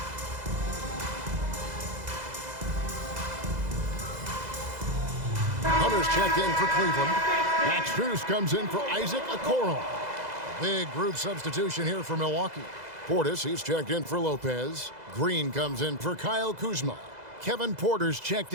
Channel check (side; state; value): left; late; 2.0 ms